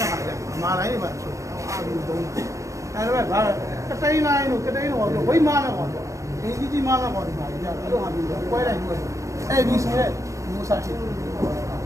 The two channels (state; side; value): late; left; 0.15 ms